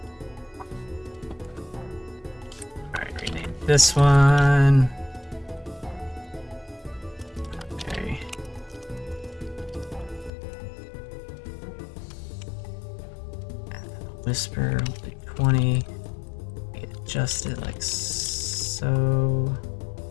Alright, rename this one. Okay. Whisper will be 20. We adjust it like so.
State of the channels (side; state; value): right; drops out; at 10.3 s